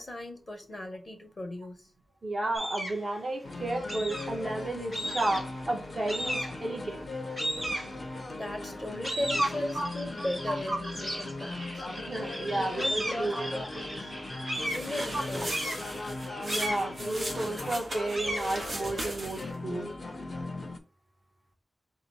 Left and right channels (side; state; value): both; normal; correlation 0.92